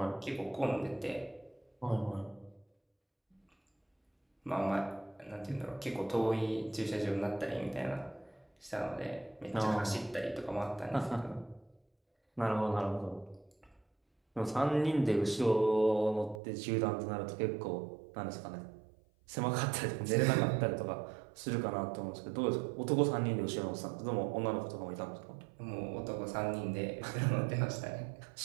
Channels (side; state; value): left; drops out; at 16.4 s